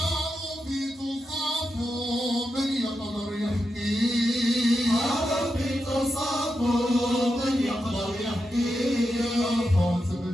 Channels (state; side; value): normal; both; correlation 0.87